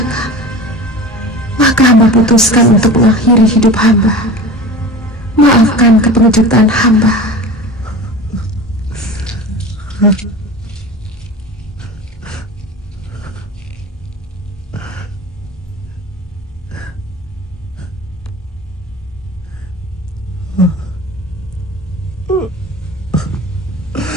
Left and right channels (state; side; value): normal; both; correlation 0.34